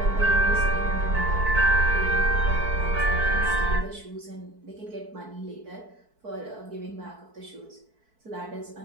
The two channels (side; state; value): left; late; 4.6 ms